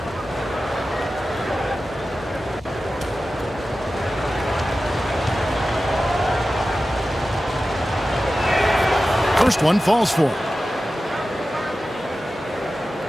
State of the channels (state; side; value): normal; both; correlation 0.94